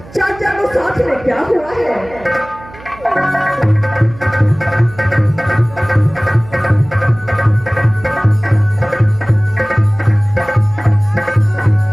चाचा को साथ में क्या हुआ है।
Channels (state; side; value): noise; right; hum, 20 dB below the sound